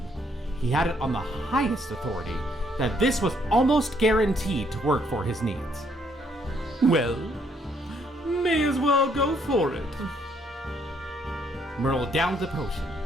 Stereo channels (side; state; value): both; normal; correlation 0.69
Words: he had it on the highest authority that this was almost guaranteed to work for his needs. Well, may as well go for it. Merle downed the potion,